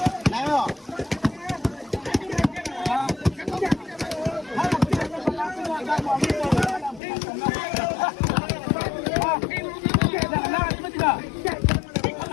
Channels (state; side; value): drops out; right; at 7.0 s